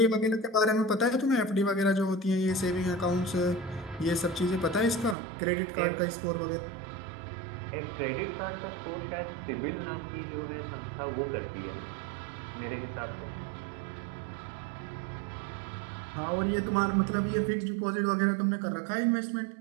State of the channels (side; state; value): left; drops out; at 5.2 s